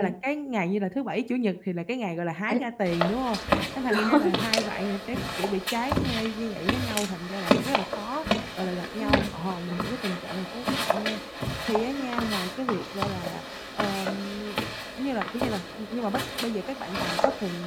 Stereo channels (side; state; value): both; identical; correlation 1.00